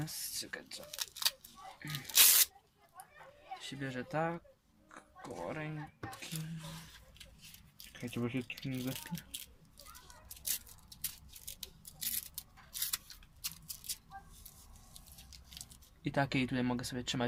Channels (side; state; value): both; identical; correlation 1.00